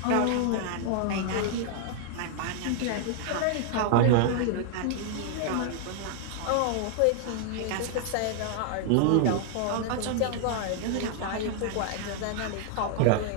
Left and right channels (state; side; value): different; both; correlation 0.00